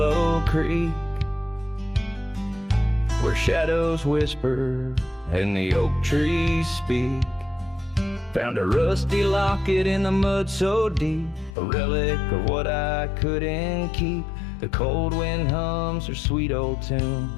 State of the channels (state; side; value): drops out; right; at 11.6 s